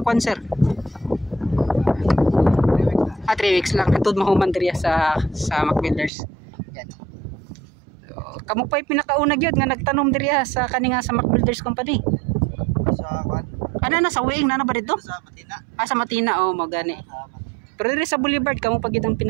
sponsor? 3 weeks lang atud mahuman diri sa MacBuilders. Yan. Kamu pa'y pinakauna gyud nga nagtanom diri sa kaninga sa MacBuilders Company. Sa kwan? Ano na sa Wing na ba dito? Sa Matina. Sa Matina, oh, magani. Pero diri sa Boulevard kamu pa gyud ang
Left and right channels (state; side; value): drops out; left; at 6.1 s